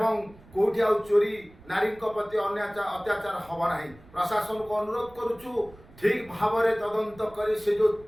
कोठी आ चोरी नारी प्रति अत्याचार हबो नाही प्रशासन को अनुरोध करूचु ठीक भाव रे तदंत करी से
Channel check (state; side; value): noise; right; rumble, 23 dB below the sound